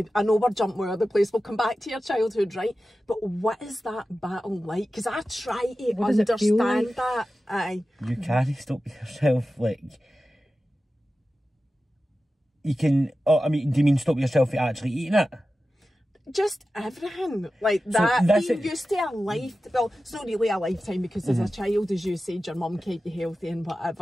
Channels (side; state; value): both; normal; correlation 0.94